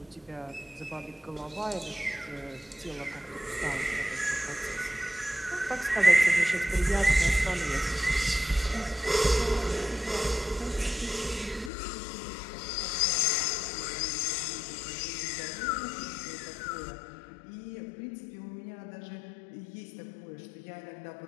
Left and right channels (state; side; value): drops out; right; at 11.7 s